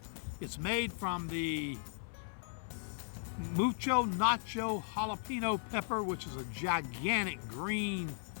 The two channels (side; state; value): right; silent; 53 dB below the other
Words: It's made from the Mucho Nacho Jalapeno pepper, which is a gigantic green,